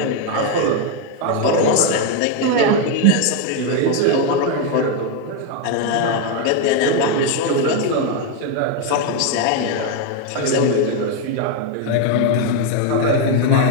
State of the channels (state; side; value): different; both; correlation 0.01